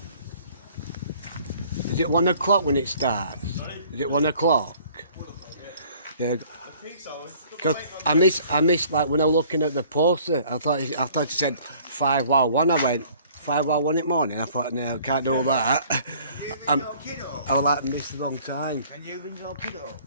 Is it 1 o'clock when it starts? Is it 1 o'clock? Yeah. Because I missed like when I was looking at the poster, I thought it said 5 while 1. I went 5 while 1 in the morning. I thought, no, I can't do that. I was like, missed the wrong time. Can you ring your kiddo?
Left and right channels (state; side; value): inverted; both; correlation -0.54